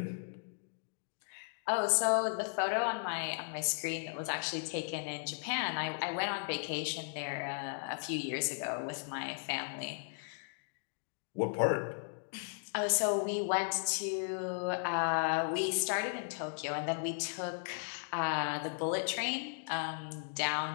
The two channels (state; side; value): silent; right; digital silence